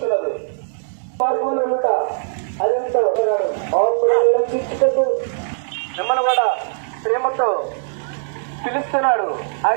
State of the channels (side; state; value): left; silent; digital silence